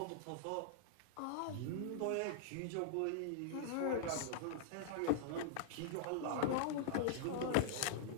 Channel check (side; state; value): both; different; correlation -0.01